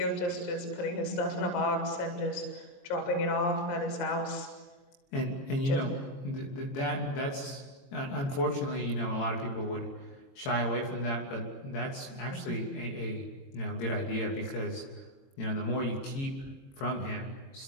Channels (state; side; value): late; right; 22 ms